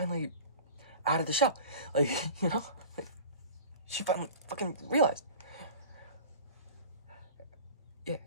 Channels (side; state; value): both; inverted; correlation -0.38